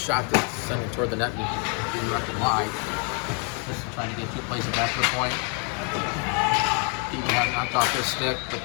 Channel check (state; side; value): quieter; right; 39.2 dB